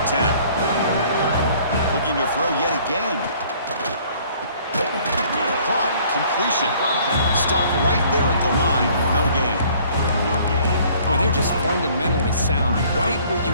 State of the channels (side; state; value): both; inverted; correlation -0.57